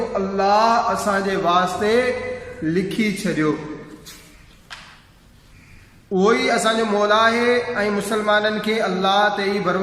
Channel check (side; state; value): both; identical; correlation 1.00